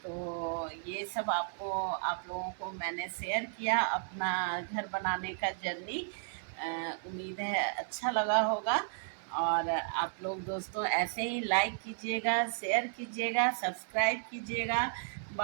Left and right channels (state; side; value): silent; left; digital silence